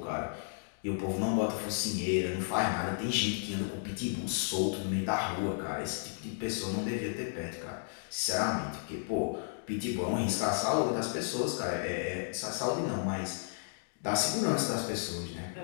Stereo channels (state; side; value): silent; right; digital silence